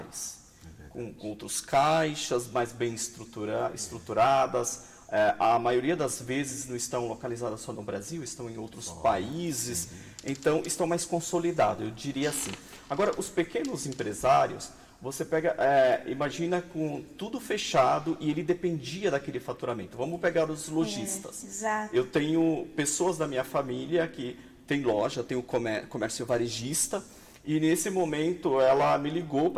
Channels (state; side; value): identical; both; correlation 1.00